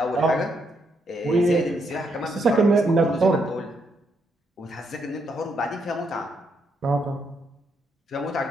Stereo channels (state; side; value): normal; both; correlation 0.77